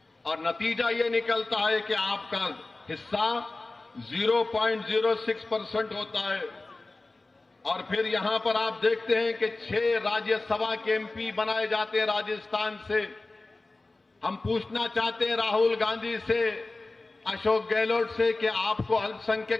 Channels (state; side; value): quieter; right; 3.2 dB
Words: और नतीजा ये निकलता है कि आपका हिस्सा 0.06% होता है। और फिर यहां पर आप देखते हैं कि 6 राज्यसभा के एमपी बनाए जाते हैं राजस्थान से। हम पूछना चाहते हैं राहुल गांधी से, अशोक गहलोत से कि आपको